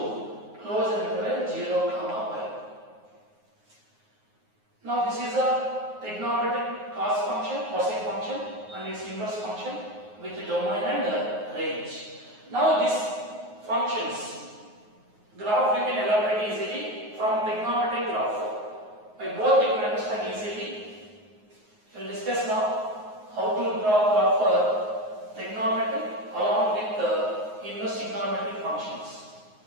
close interval 0 comma pi. Now this is a trigonometric cos function, cosine function and its inverse function with domain and range. Now these functions graph we can elaborate easily from trigonometric graph. By both you can understand easily. We will discuss now how to draw graph for trigonometry along with the inverse trigonometric functions.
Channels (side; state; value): left; late; 9.5 ms